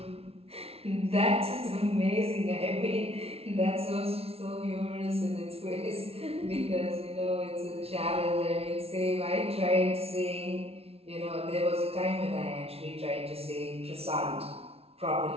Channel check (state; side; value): late; left; 0.29 ms